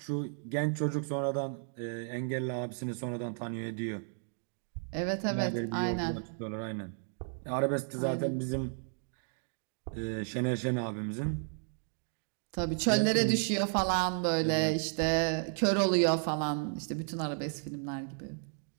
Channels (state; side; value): silent; left; 56 dB below the other